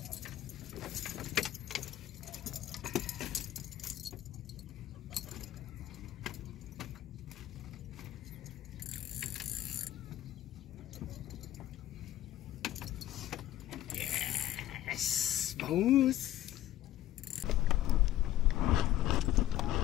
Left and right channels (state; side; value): quieter; right; 13.3 dB